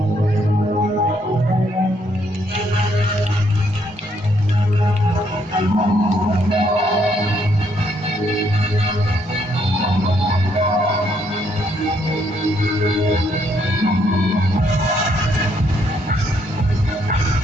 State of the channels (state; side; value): normal; both; correlation 0.72